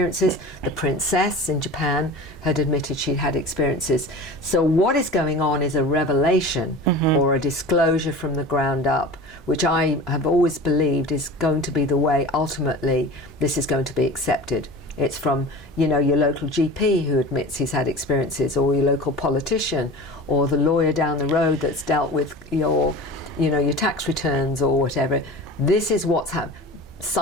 The princess in Japan had admitted she'd had experiences. So what is going on is a revelation or a disclosure from the ground up, which I have always believed is going to be the way ultimately this is going to be accepted. It's from, you know, your local GP who admits he's had experiences, or your local politician, or the lawyer down the road that's dealt with your tax returns or whatever. This is what's happened.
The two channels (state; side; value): normal; both; correlation 0.36